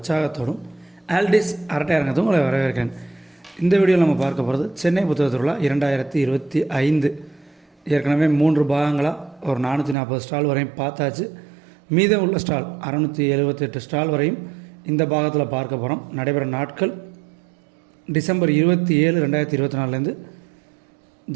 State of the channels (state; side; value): drops out; left; at 10.0 s